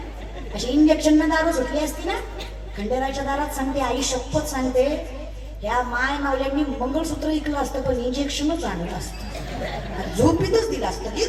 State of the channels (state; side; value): identical; both; correlation 1.00